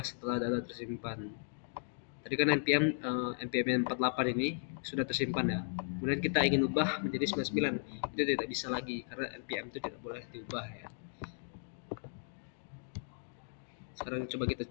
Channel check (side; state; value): right; silent; digital silence